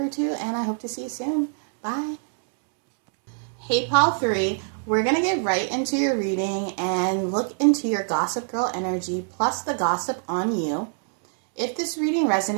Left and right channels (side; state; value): left; silent; 62 dB below the other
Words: 2, and I hope to see you soon. Bye. Hey, pile 3, we're going to get right into your reading and look into your gossip girl energy plus the gossip on you. If this reading